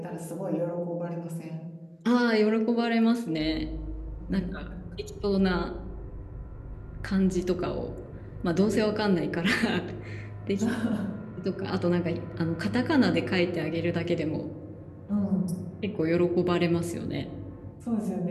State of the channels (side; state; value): both; identical; correlation 1.00